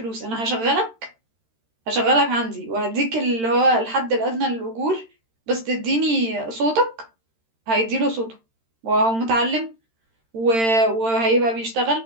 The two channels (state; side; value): late; left; 13 ms